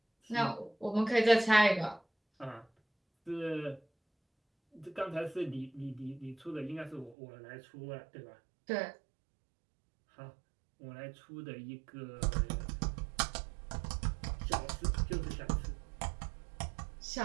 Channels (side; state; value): left; drops out; at 7.2 s